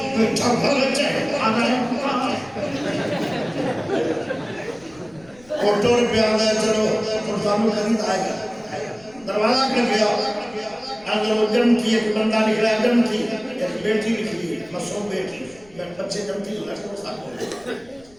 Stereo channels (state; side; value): noise; left; rumble, 27 dB below the sound